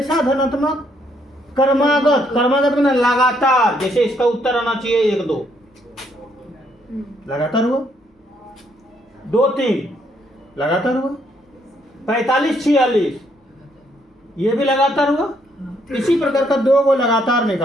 धनात्मक? क्रमागत। क्रमागत में लगातार, जैसे इसका उत्तर आना चाहिए 1 2 लगातार हुआ, 2 3 लगातार हुआ, 45 46 ये भी लगातार हुआ। इसी प्रकार का दो को लगातार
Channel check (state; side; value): normal; both; correlation 0.71